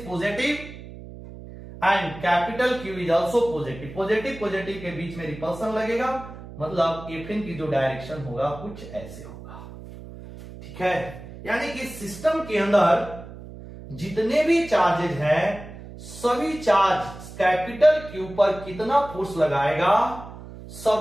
positive and capital Q is also positive. Positive के बीच में रिपल्सन लगेगा, मतलब Fn की जो डायरेक्शन होगा कुछ ऐसे होगा। ठीक है, यानी कि सिस्टम के अंदर जितने भी चार्जेज हैं, सभी चार्ज कैपिटल Q पर कितना फोर्स लगाएगा,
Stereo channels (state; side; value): noise; right; hum, 14 dB below the sound